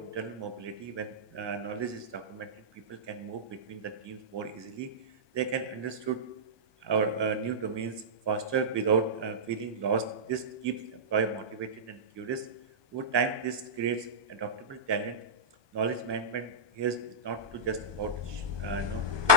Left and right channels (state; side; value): late; left; 1.2 ms